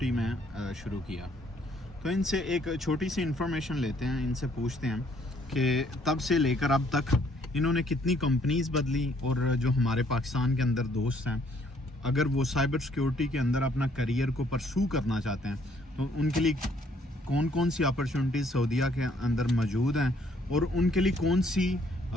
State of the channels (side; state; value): both; normal; correlation 0.65